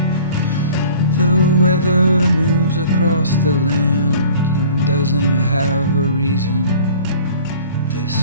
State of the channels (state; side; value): inverted; both; correlation -0.47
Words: The weather moves across the land and doesn't have a reason.